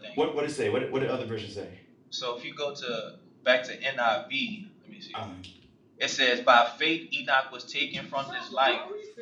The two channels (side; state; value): both; identical; correlation 1.00